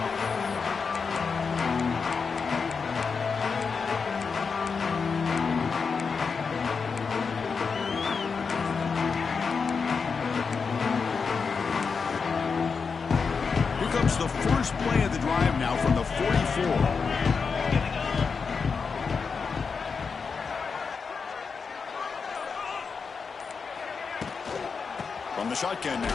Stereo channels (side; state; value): right; quieter; 5.4 dB